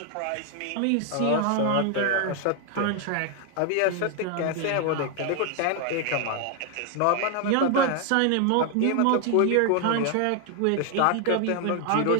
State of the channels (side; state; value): both; different; correlation 0.00